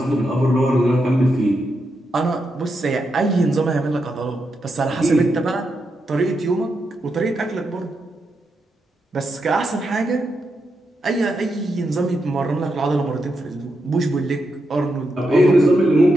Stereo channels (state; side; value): normal; both; correlation 0.84